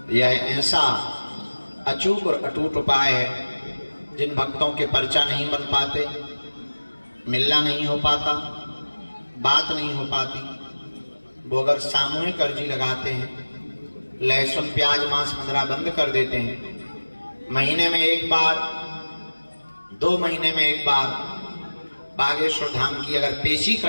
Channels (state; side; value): inverted; both; correlation -1.00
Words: यह ऐसा अचूक और अटूट उपाय है जिन भक्तों के पर्चा नहीं बन पाते, मिलना नहीं हो पाता, बात नहीं हो पाती, वो अगर सामूहिक अर्जी लगाते हैं, लहसुन प्याज मांस मदिरा बंद कर देते हैं, महीने में एक बार 2 महीने में एक बार बागेश्वर धाम की अगर पेशी